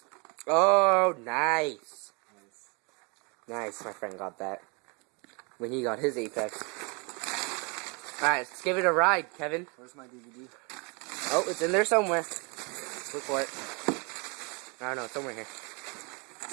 Oh, nice. Nice. Nice, my friend got that. When he got his Apex. Alright, let's give it a ride, Kevin. Where's my DVD? Oh, it's in there somewhere. Look for it. I don't know, it's somewhere here.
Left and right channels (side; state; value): left; quieter; 31.8 dB